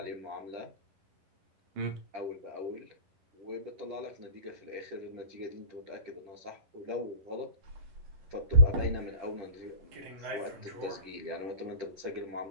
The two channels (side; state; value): left; late; 10 ms